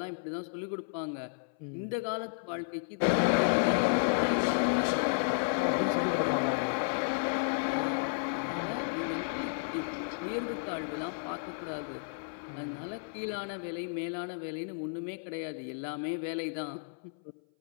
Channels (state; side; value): silent; right; 56 dB below the other